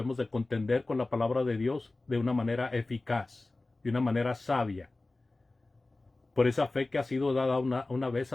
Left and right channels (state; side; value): quieter; right; 3.1 dB